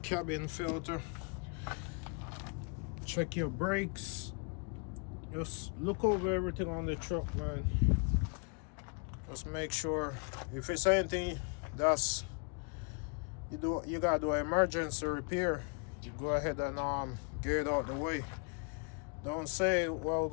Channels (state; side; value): quieter; right; 35.6 dB